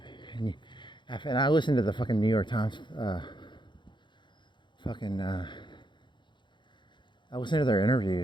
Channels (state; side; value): late; right; 0.23 ms